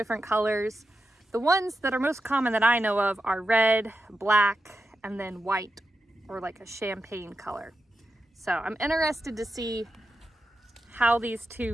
colors. The ones that are most common that I know of are red, black, and then white, or like a champagne color. So I'm interested to see how these two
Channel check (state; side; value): normal; both; correlation 0.88